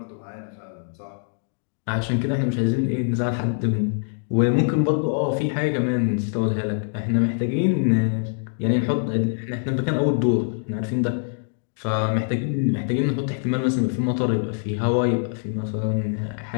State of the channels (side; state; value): right; silent; digital silence